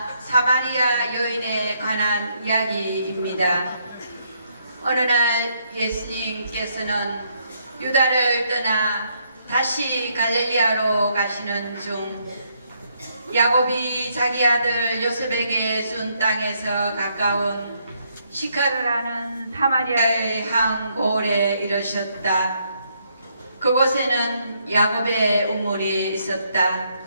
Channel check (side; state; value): both; inverted; correlation -0.73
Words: 사마리아 여인에 관한 이야기입니다. 어느 날 예수님께서는 유다를 떠나 다시 갈릴리아로 가시는 중 야곱이 자기 아들 요셉에게 준 땅에서 가까운 시카르라는 사마리아의 한 고을에 이르셨다. 그곳에는 야곱의 우물이 있었다.